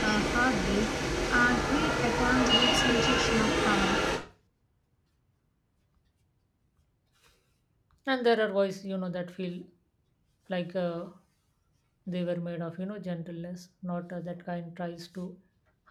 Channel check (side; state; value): both; identical; correlation 1.00